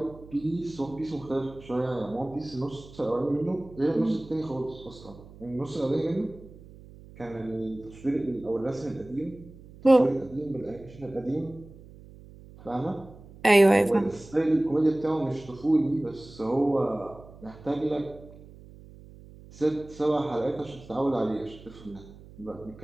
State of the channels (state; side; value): noise; right; hum, 19 dB below the sound